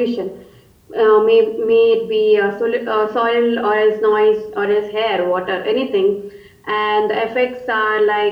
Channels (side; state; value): both; identical; correlation 1.00